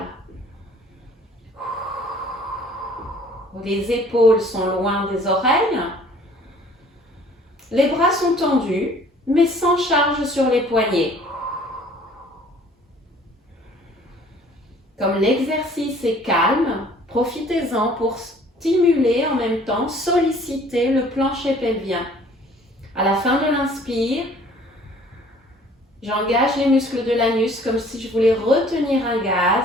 Les épaules sont loin des oreilles. Les bras sont tendus, mais sans charge sur les poignets. Comme l'exercice est calme, profitez-en pour stimuler en même temps, solliciter le plancher pelvien. À la fin de l'inspire, j'engage les muscles de l'anus comme si je voulais retenir un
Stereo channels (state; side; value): normal; both; correlation 0.54